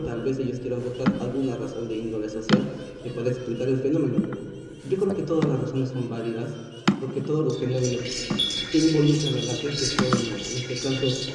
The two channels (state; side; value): identical; both; correlation 1.00